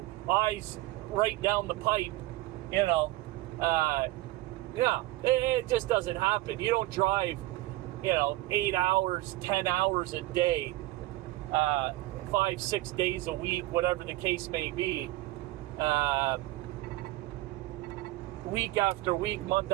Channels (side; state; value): left; quieter; 18.3 dB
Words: eyes right down the pipe, you know. It just doesn't happen. You don't drive, 8 hours, 10 hours a day, 5-6 days a week, whatever the case may be, week after week, month